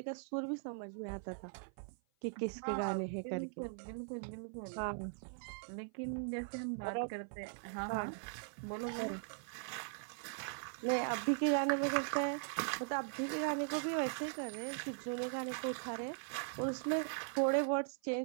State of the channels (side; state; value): left; silent; 51 dB below the other